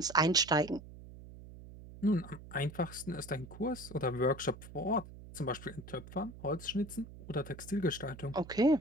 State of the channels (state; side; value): noise; right; hum, 16 dB below the sound